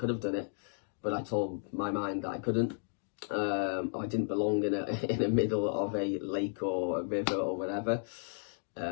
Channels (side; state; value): right; silent; digital silence